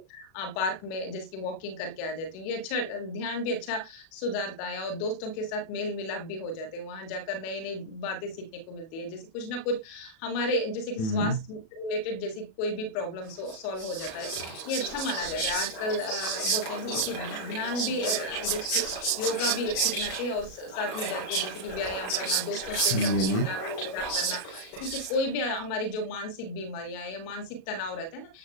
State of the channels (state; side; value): late; right; 37 ms